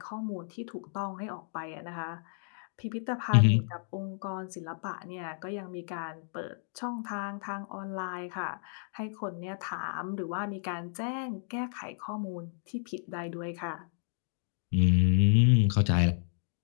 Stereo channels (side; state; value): right; silent; digital silence